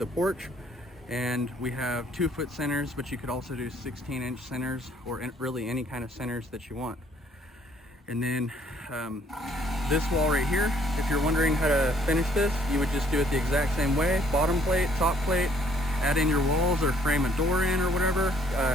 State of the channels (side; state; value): both; normal; correlation 0.63